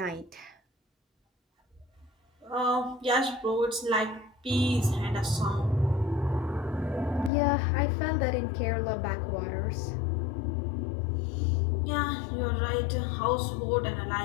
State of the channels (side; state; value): right; drops out; at 7.3 s